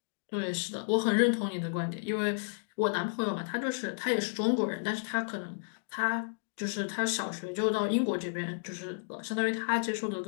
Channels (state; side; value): silent; right; digital silence